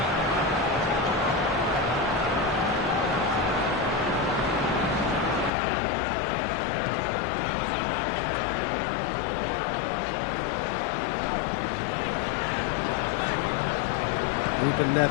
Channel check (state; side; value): drops out; right; at 5.5 s